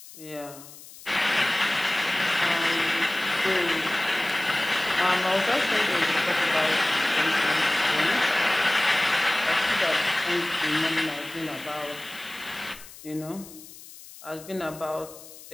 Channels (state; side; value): noise; left; hiss, 18 dB below the sound